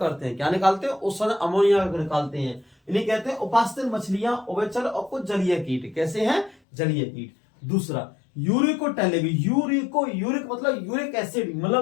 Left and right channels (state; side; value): drops out; right; at 6.6 s